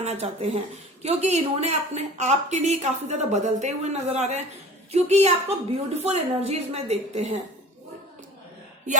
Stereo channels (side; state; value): both; normal; correlation 0.41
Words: चाहते हैं, क्योंकि इन्होंने अपने आपके लिए काफी ज्यादा बदलते हुए नजर आ रहे हैं, क्योंकि ये आपको ब्यूटीफुल एनर्जीज में देखते हैं, ये